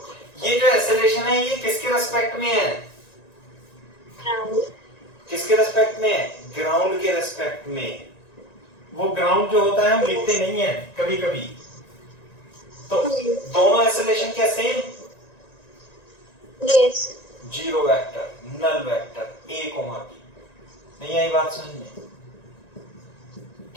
ये जो एक्सेलरेशन है ये किसके रेस्पेक्ट में है? किसके रेस्पेक्ट में है? ग्राउंड के रेस्पेक्ट में। वो ग्राउंड जो होता है हम लिखते नहीं है कभी कभी, तो दोनों एक्सेलरेशन क्या same? Yes. Zero vector, null vector, A comma B. नहीं आई बात समझ में?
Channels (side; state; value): right; late; 1.9 ms